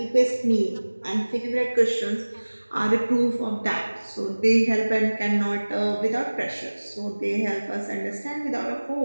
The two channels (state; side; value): inverted; both; correlation -1.00